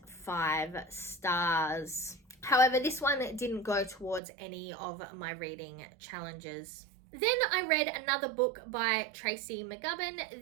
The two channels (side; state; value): left; drops out; at 4.2 s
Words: 5 stars. However, this one didn't go towards any of my reading challenges. Then I read another book by Tracy McGubbin.